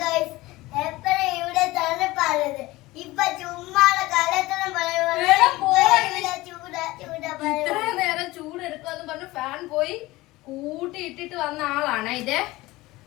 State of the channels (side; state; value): right; quieter; 19.4 dB